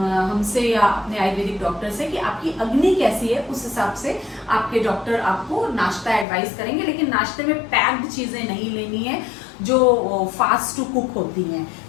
हमसे या अपने आयुर्वेदिक डॉक्टर से कि आपकी अग्नि कैसी है। उस हिसाब से आपके डॉक्टर आपको नाश्ता एडवाइस करेंगे। लेकिन नाश्ते में पैक्ड चीजें नहीं लेनी है जो फास्ट टू कुक होती हैं।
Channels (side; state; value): right; drops out; at 6.2 s